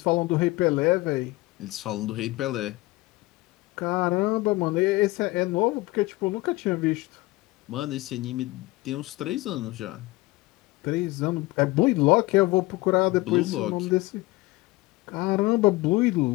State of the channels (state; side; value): quieter; right; 20.7 dB